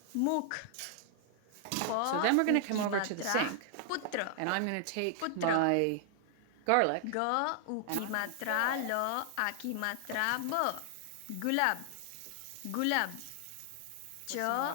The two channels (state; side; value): different; both; correlation 0.00